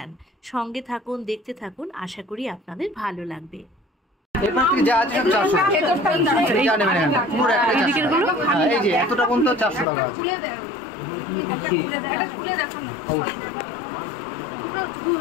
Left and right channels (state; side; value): drops out; right; at 9.9 s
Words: সঙ্গে থাকুন, দেখতে থাকুন, আশা করি আপনাদের ভালো লাগবে।